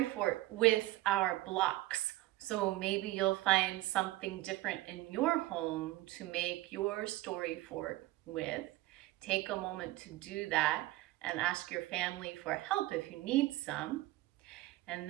fort with our blocks. So maybe you'll find something different in your home to make your story fort with. Take a moment to do that and ask your family for help if you need some. And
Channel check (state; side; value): quieter; left; 17.7 dB